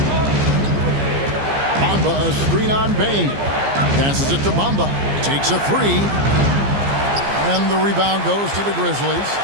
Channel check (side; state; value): left; late; 15 ms